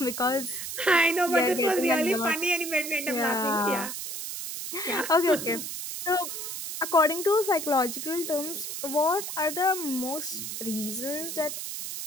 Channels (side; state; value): right; noise; hiss, 6 dB below the sound